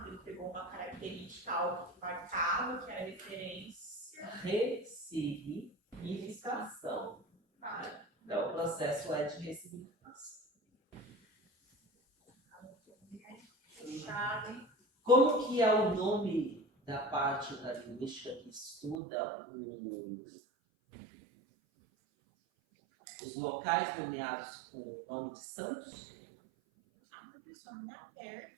Ele pegou uma característica algo que marcava, que era referência. Ressignificação. Então, o processo é de ressignificação. Como que é o nome da parte da linguística que estuda os locais nomeados com o nome de santos? Pessoal, não é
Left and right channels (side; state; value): left; drops out; at 18.9 s